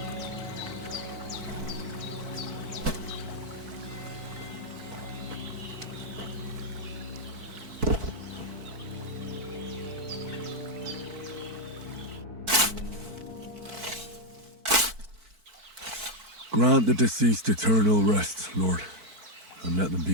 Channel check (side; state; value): left; late; 4.5 ms